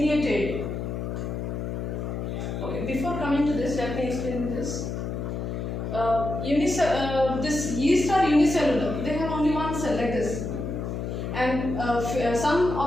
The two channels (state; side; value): noise; left; hum, 4 dB below the sound